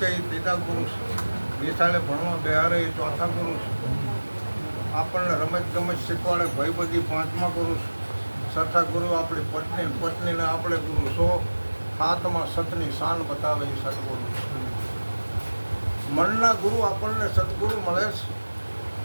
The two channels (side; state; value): both; inverted; correlation -1.00